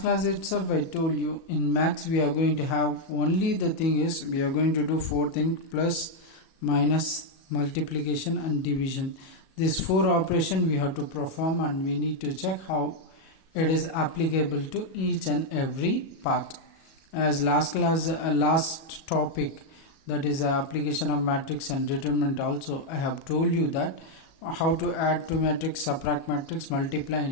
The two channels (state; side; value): late; right; 37 ms